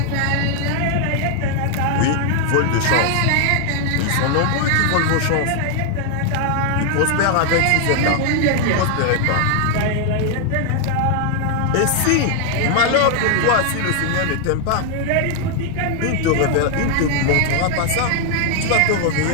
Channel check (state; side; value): different; both; correlation 0.00